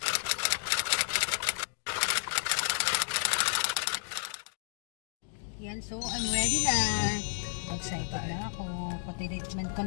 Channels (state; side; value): silent; right; digital silence